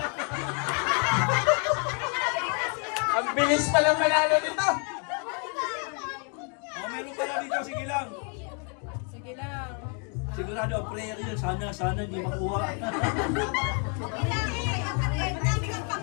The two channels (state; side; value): quieter; right; 39.3 dB